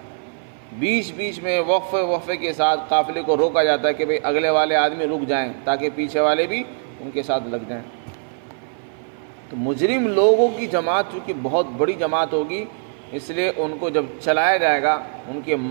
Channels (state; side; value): silent; left; 58 dB below the other